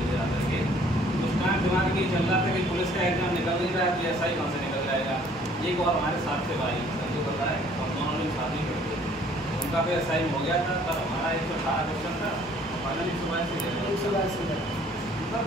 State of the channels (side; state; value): both; normal; correlation 0.58